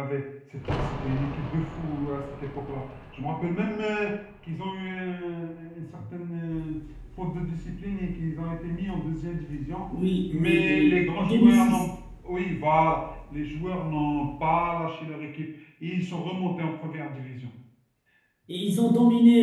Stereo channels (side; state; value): both; identical; correlation 1.00